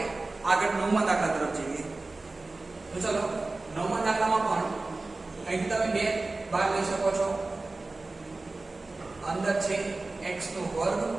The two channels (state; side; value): quieter; left; 3.3 dB